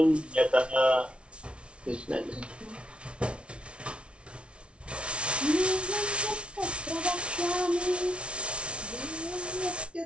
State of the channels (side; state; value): left; late; 0.059 ms